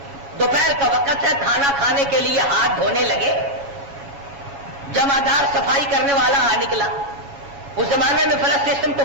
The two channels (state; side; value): late; left; 7.2 ms